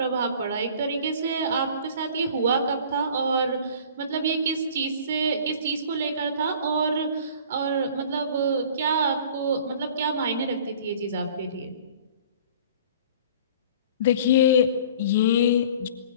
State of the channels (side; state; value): both; inverted; correlation -0.46